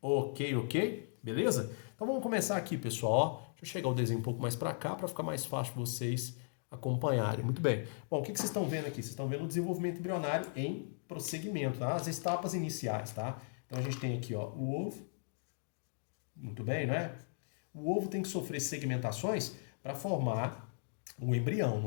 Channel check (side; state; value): right; silent; digital silence